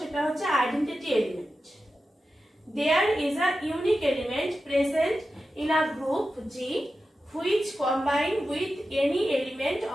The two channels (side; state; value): both; normal; correlation 0.92